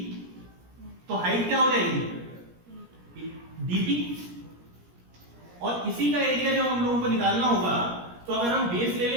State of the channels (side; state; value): left; late; 17 ms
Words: तो हाइट क्या हो जाएगी? DP। और इसी का एरिया जब हम लोगों को निकालना होगा, तो अगर हम बेस ले